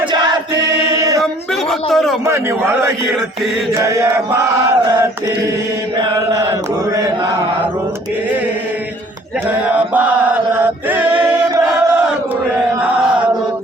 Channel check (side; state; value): both; normal; correlation 0.56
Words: ಜಾತಿ ನಂಬಿದ ಭಕ್ತರು ಮನಿ ಒಳಗಿರ್ತಿ ಜಯ ಭಾರತಿ ಬೆಳಗುವೆ ನಾರುತಿ ಜಯ ಭಾರತಿ ಬೆಳಗುವೆ